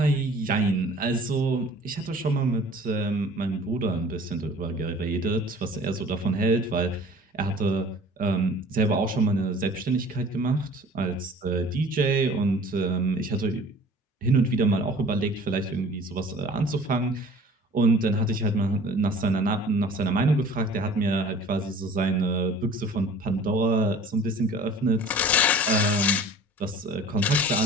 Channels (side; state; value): both; normal; correlation 0.46